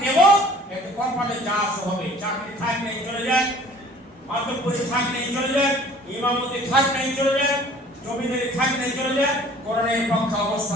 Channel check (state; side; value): normal; both; correlation 0.50